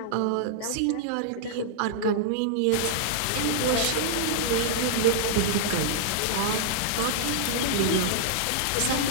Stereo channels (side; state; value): both; different; correlation -0.01